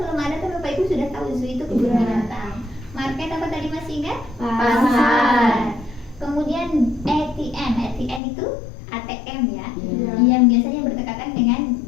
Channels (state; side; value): drops out; right; at 8.2 s